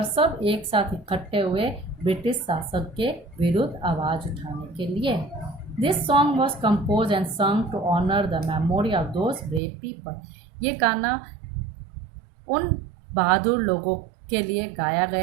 सब एक साथ इकट्ठे हुए ब्रिटिश शासक के विरुद्ध आवाज़ उठाने के लिए. This song was compose and sung to honour the memory of those brave people. ये गाना उन बहादुर लोगों के लिए गाया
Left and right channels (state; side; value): drops out; left; at 9.6 s